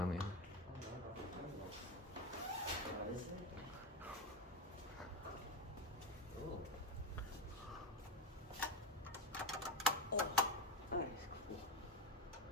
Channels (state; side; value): normal; both; correlation 0.17